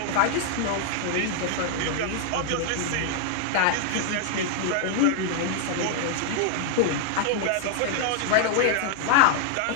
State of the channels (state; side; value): different; both; correlation -0.01